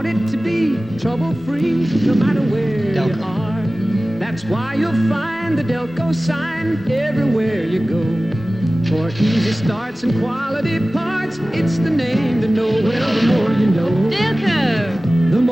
it to be trouble-free, no matter where you are. That's why you'll find the Delco sign everywhere you go. For easy starts and quality parts, it's the name to know. Well, the more you know. Delco. The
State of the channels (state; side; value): normal; both; correlation 0.97